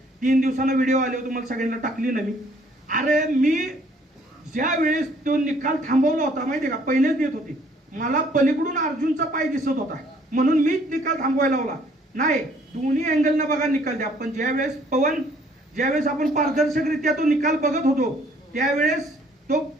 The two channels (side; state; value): both; normal; correlation 0.61